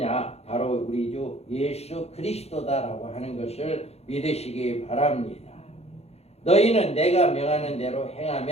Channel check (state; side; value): late; right; 0.30 ms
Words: 바로 우리 주 예수 그리스도다라고 하는 것을 믿으시기 바랍니다. 너희는 내가 명하는 대로